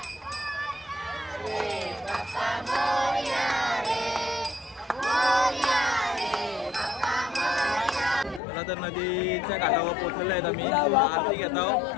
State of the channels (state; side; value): drops out; right; at 8.4 s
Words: तर नदीच्या काठावर पोहोचलेलो आहेत आम्ही. आरती घेत आहोत.